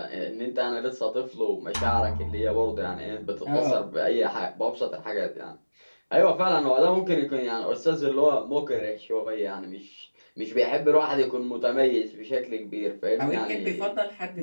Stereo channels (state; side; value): inverted; both; correlation -1.00